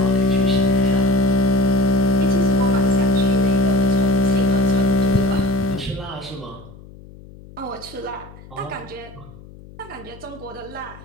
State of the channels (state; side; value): noise; left; hum, 20 dB below the sound